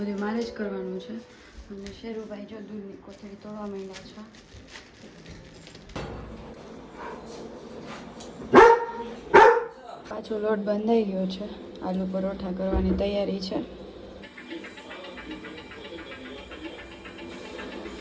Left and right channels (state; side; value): identical; both; correlation 1.00